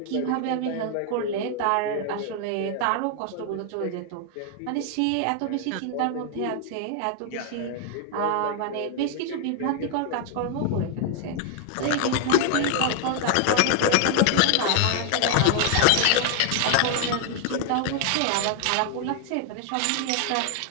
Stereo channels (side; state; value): both; different; correlation 0.00